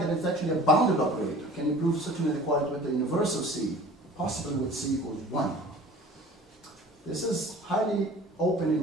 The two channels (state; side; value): normal; both; correlation 0.45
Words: that it's actually a bounded operator? Can you prove such an inequality with the universal C, possibly with C equals 1? This is highly open